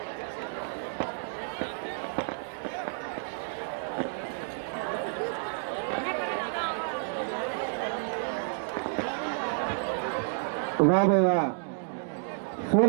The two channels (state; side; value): silent; left; digital silence